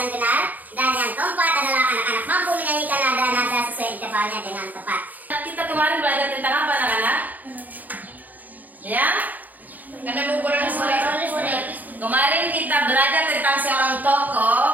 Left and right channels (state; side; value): late; left; 0.082 ms